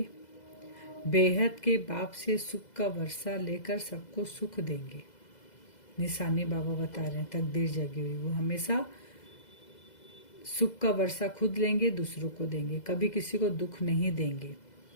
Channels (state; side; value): late; right; 2.0 ms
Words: बेहद के बाप से सुख का वर्षा लेकर सबको सुख देंगे। निशानी बाबा बता रहे हैं, तकदीर जगी हुई वो हमेशा सुख का वर्षा खुद लेंगे, दूसरों को देंगे, कभी किसी को दुख नहीं देंगे।